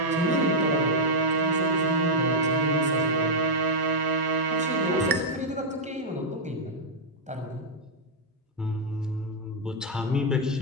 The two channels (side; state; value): both; normal; correlation -0.04